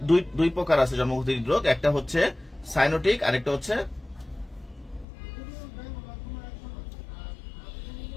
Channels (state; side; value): drops out; right; at 5.1 s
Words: দুই প্রকার আছে জন্মগত হৃদরোগ। একটা হচ্ছে সাইনোটিক, আরেকটা হচ্ছে